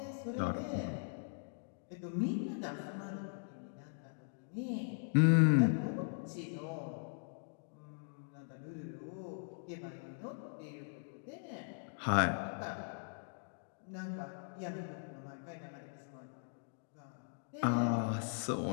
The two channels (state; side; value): silent; right; digital silence